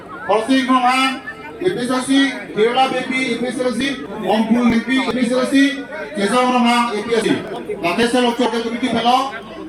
Horsing Rohan, IPSC, Kerala Bibi, IPSC, Ompul Bibi, IPSC, Kesang Rohan, IPSC. Lakesel Lokcor ke Bibi belok.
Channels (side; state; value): both; identical; correlation 1.00